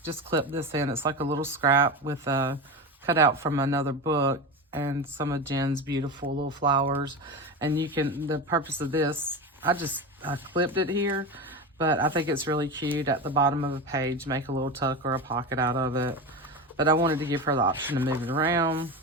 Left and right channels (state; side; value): normal; both; correlation 0.23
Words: just clipped this in. It's like a little scrap with a cutout from another book and some of Jen's beautiful little flowers. And you can, the purpose of this, I clipped it here, but I think it's really cute at the bottom of a page, make a little tuck or a pocket out of it. But I wanted to give her the option to move it around.